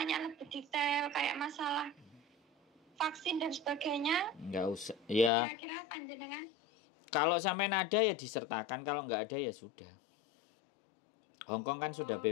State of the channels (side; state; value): right; drops out; at 5.3 s